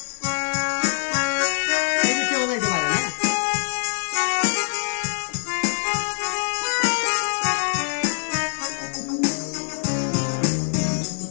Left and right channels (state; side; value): silent; right; 63 dB below the other